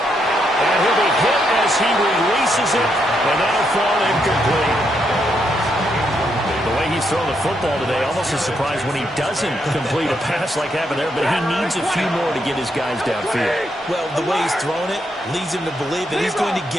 he'll be hit as he releases it, and that'll fall incomplete. The way he's throwing the football today, almost a surprise when he doesn't complete a pass like happened there, but he needs a few more to get his guys downfield. Well, the way he's thrown it leads him to believe that he's going to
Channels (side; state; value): both; normal; correlation 0.78